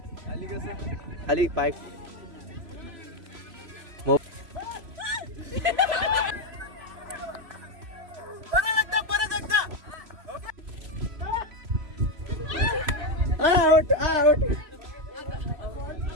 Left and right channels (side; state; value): left; late; 3.2 ms